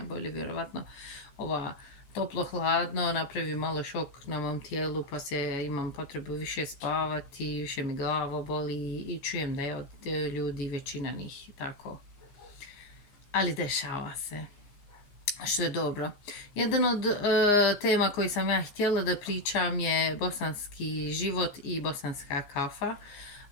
vjerovatno ova toplo-hladno napravi malo šok na mom tijelu, pa imam potrebu više spavati, više mi glava boli i čujem da je od ljudi većina njih tako. Ali dešava se, što je dobro. Jedan od tema koji sam ja htjela da pričam je bosanski život i bosanska kafa,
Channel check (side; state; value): right; late; 15 ms